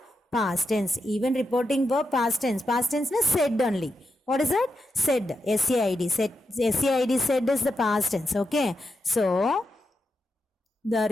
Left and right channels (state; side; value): normal; both; correlation 0.86